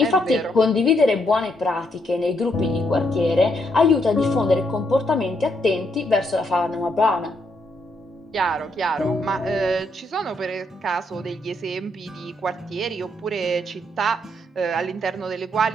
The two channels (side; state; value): both; normal; correlation 0.75